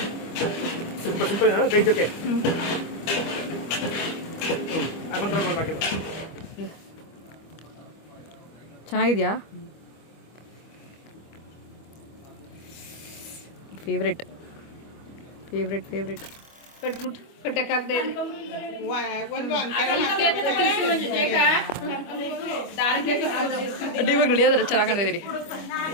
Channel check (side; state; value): right; late; 25 ms